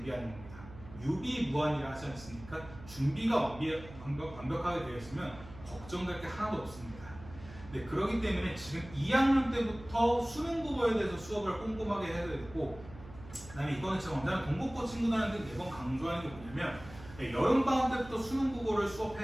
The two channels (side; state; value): right; noise; hum, 17 dB below the sound